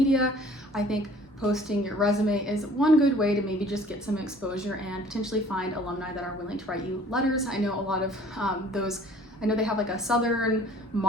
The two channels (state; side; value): normal; both; correlation 0.53